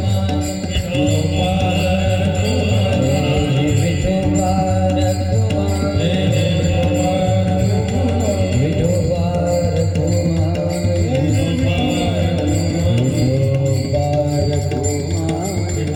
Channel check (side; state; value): both; identical; correlation 1.00